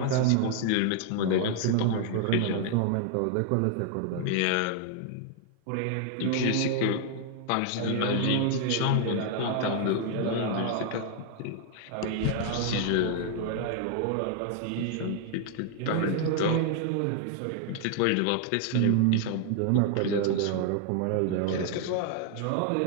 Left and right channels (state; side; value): different; both; correlation 0.00